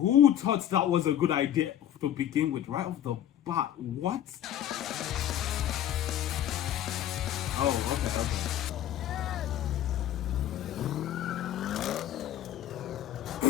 thought that was a good idea to begin with right off the bat? What? Oh, okay.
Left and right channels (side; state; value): right; quieter; 11.3 dB